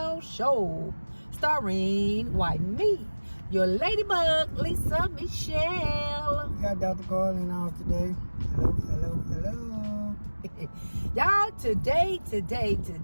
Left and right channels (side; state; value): both; inverted; correlation -1.00